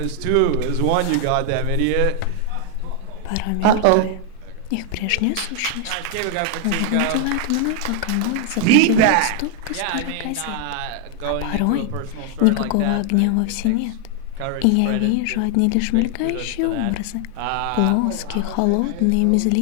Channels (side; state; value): both; different; correlation 0.00